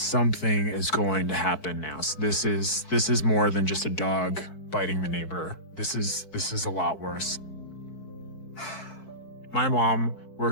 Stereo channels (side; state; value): right; late; 4.6 ms